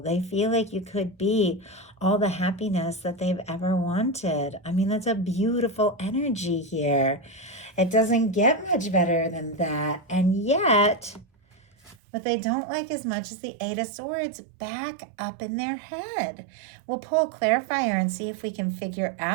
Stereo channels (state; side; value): drops out; left; at 12.0 s